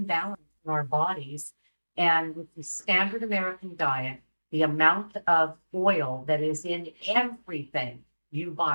balance in our bodies. And with the standard American diet, the amount of oil that is in everything you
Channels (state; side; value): inverted; both; correlation -1.00